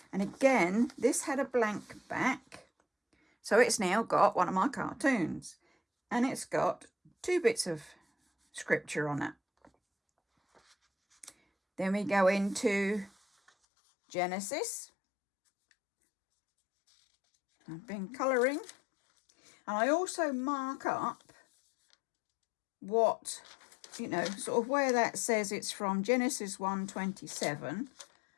And again, this had a blank back, so it's now got one of my cartoons, and it's got 2 bits of scripture on it. Then we go into Genesis. I've been colouring, and I also mark up what, you know, sort of where that says it's from. Genesis 1:27.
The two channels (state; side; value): drops out; right; at 13.5 s